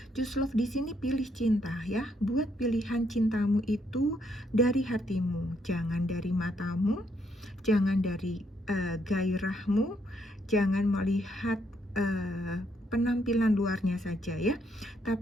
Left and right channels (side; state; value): both; normal; correlation 0.73